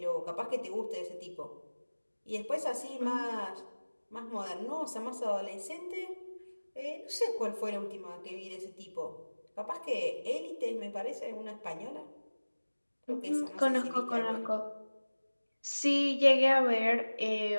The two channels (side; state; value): both; inverted; correlation -1.00